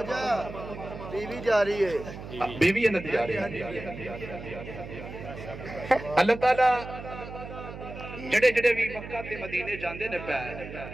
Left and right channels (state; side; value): noise; right; hum, 11 dB below the sound